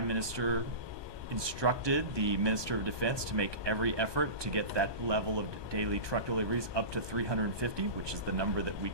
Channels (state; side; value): late; left; 1.2 ms